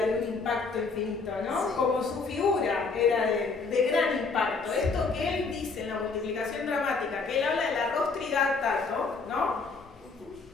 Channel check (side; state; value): right; quieter; 4.4 dB